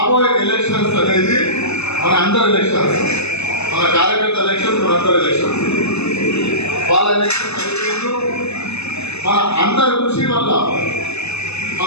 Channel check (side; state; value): right; late; 0.80 ms